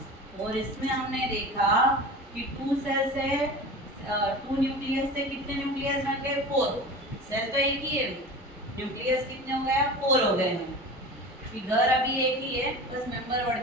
और इसमें हमने देखा कि 2 सेल से 2 न्यूक्लियस से कितने न्यूक्लियस बन गए, 4। सेल तो एक ही है, न्यूक्लियस कितने हो गए, 4 हो गए हैं। कि घर अभी एक ही है, बस मेंबर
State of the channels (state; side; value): normal; both; correlation 0.34